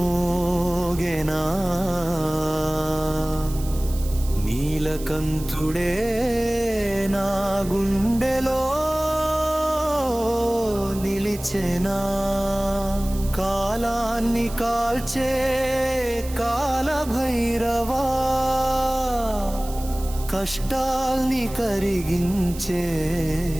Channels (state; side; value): noise; right; hiss, 15 dB below the sound